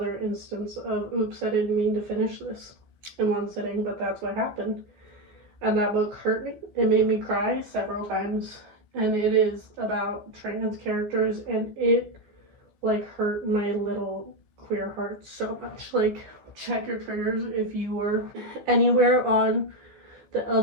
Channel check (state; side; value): late; left; 14 ms